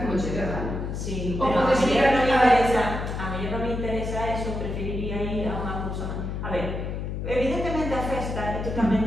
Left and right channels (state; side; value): noise; left; hum, 4 dB below the sound